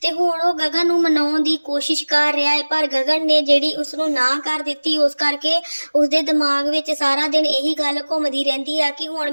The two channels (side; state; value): both; inverted; correlation -1.00